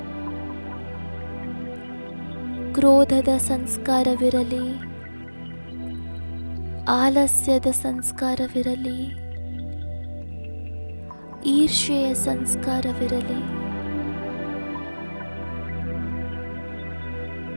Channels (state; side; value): inverted; both; correlation -1.00